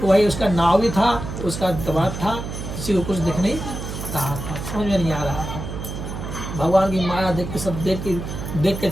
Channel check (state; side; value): noise; right; hum, 7 dB below the sound